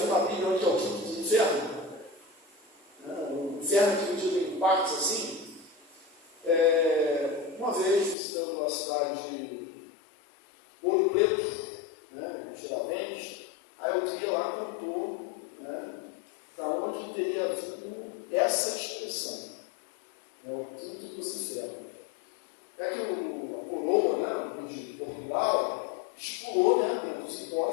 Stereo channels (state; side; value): drops out; right; at 8.2 s